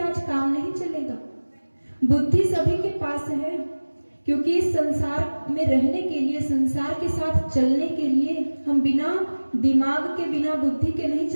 काम नहीं चलेगा। बुद्धि सभी के पास है, क्योंकि इस संसार में रहने के लिए, संसार के साथ चलने के लिए हम बिना दिमाग के, बिना बुद्धि के नहीं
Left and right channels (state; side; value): inverted; both; correlation -1.00